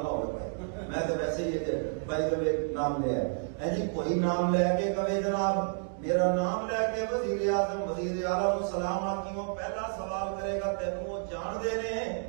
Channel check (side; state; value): left; silent; 57 dB below the other